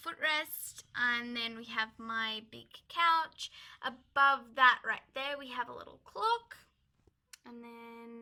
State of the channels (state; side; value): identical; both; correlation 1.00